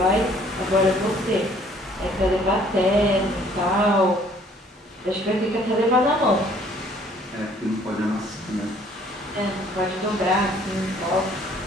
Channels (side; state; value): both; normal; correlation 0.59